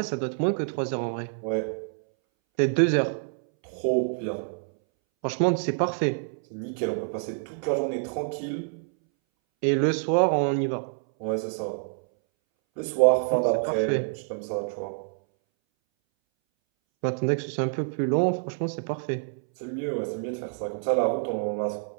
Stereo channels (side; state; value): left; silent; 60 dB below the other